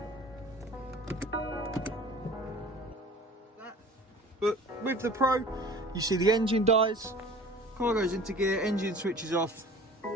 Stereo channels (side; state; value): both; normal; correlation 0.44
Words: But with the Pro, you see the engine dies, car goes into gear, engine switches off,